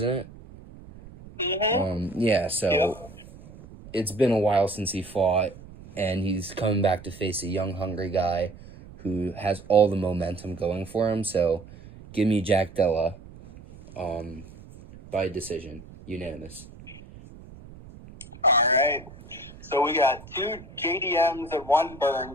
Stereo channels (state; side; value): noise; right; rumble, 18 dB below the sound